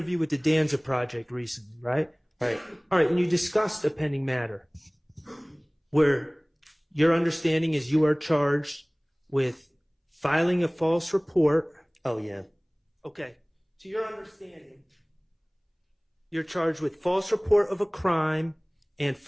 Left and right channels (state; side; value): identical; both; correlation 1.00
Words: with the Danza Project recently, right? Right. All right, and you discussed a pending matter where your understanding is you are charged with filing a false report. Oh, yeah. Okay. To your understanding, you're charged with false report of a crime and